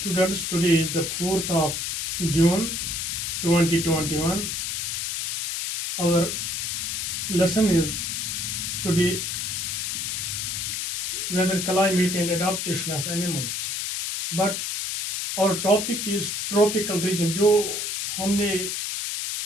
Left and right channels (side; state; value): left; noise; hiss, 2 dB below the sound